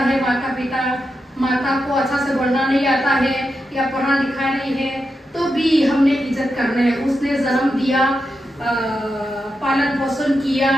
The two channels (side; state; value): both; normal; correlation 0.87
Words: माता को अच्छा से बोलना नहीं आता है या पढ़ा लिखा नहीं है, तो भी हमने इज्जत करना है। उसने जन्म दिया, पालन पोषण किया,